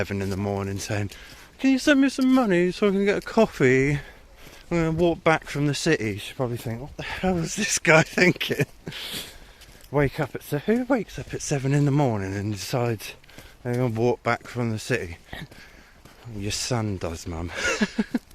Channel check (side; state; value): both; identical; correlation 1.00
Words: in the morning saying, can you send me some money so I can get a coffee? I'm going to walk back from the city. She'll probably think, what the hell is this guy thinking? Who wakes up at 7 in the morning and decides they're going to walk back from the city? Your son does, Mum.